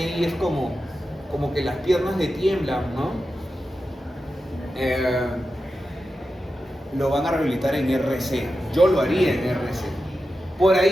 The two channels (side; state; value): both; normal; correlation 0.91